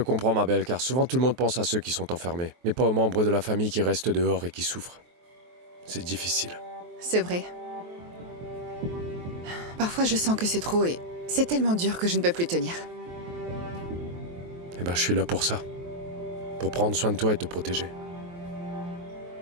ma belle, car souvent tout le monde pense à ceux qui sont enfermés, mais pas aux membres de la famille qui restent dehors et qui souffrent. C'est difficile. C'est vrai. Parfois, je sens que c'est trop et c'est tellement dur que je ne peux plus tenir. Eh ben, je suis là pour ça. Pour prendre soin de toi et te protéger.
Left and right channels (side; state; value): left; late; 23 ms